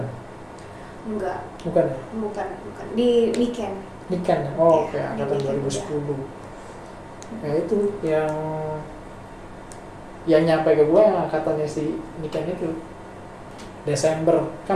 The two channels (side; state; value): both; identical; correlation 1.00